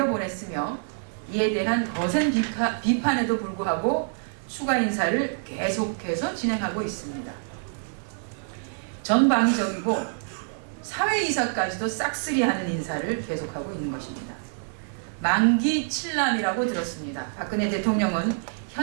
이에 대한 거센 비판에도 불구하고 추가 인사를 계속해서 진행하고 있습니다. 전방위적이고 사회이사까지도 싹쓸이하는 인사를 계속하고 있는 것입니다. 만기 칠남이라고 들었습니다. 박근혜 대통령은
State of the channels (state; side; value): silent; left; digital silence